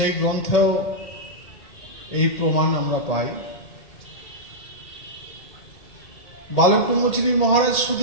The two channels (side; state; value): right; late; 1.8 ms